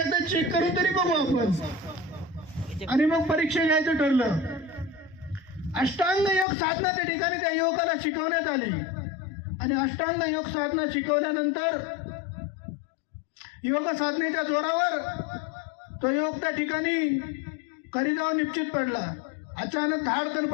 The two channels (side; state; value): right; drops out; at 6.5 s